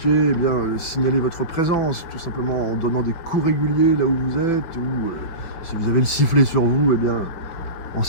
eh bien, signalez votre présence, tout simplement en donnant des coups réguliers là où vous êtes, ou si vous avez le sifflet sur vous, eh bien, en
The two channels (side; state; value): right; late; 5.9 ms